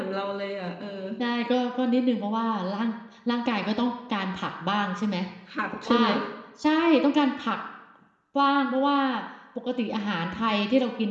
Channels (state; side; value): identical; both; correlation 1.00